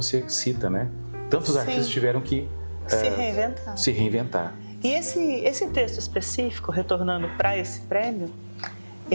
cita, né? Tantos artistas tiveram que se reinventar. E esse texto específico, retornando para esse prêmio,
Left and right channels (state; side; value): inverted; both; correlation -1.00